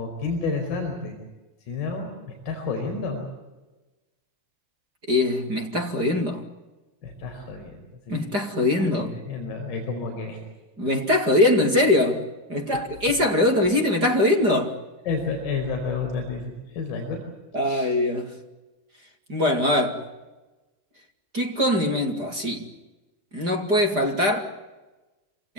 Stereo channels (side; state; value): left; late; 5.0 ms